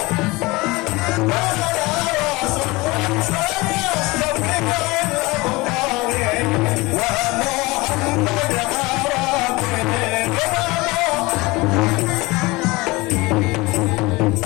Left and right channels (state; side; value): quieter; right; 23.0 dB